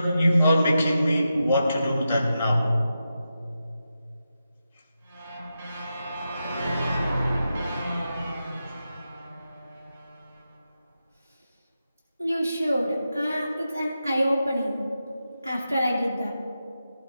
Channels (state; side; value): inverted; both; correlation -0.89